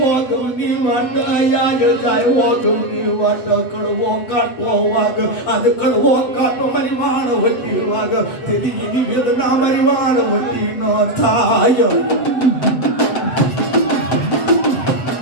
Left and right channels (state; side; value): late; right; 7.8 ms